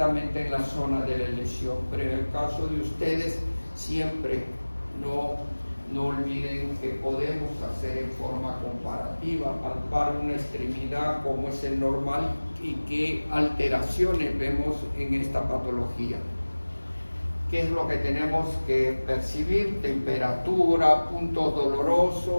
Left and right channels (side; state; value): both; inverted; correlation -1.00